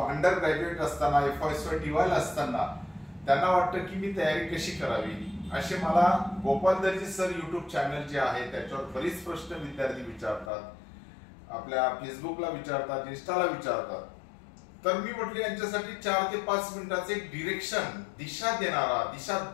अंडर ग्रॅज्युएट असताना FY टीवायल असताना त्यांना वाटतं की मी तयारी कशी करावी. असे मला गोपाल दर्जी सर युट्यूब चॅनल जे आहे त्याच्यावर बरीच प्रश्न विद्यार्थी विचारतात, आपल्या फेसबुकला विचारतात, इंस्टाला विचारतात. तर मी म्हटलं यांच्यासाठी 4 ते 5 मिनिटाचे एक डिरेक्शन, दिशा देणारा, दिशा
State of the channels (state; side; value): drops out; right; at 10.5 s